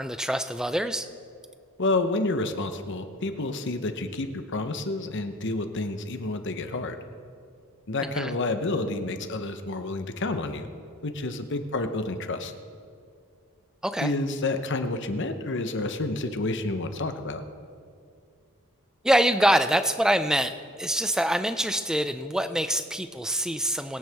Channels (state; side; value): normal; both; correlation 0.56